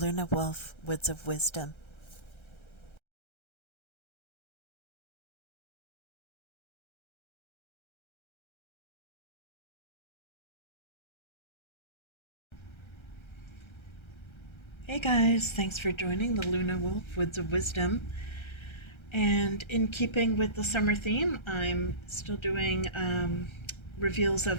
Woods of Wisdom. Hey guys, thanks for joining the Lunawolf Woods of Wisdom. And in keeping with the summer theme, I'm still doing reveals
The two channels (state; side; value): late; right; 1.3 ms